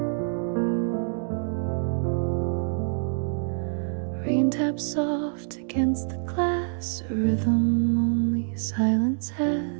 Rain taps soft against the glass, a rhythm only silence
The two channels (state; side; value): silent; left; digital silence